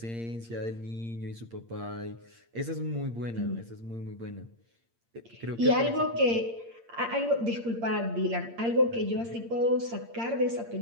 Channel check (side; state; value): left; late; 8.7 ms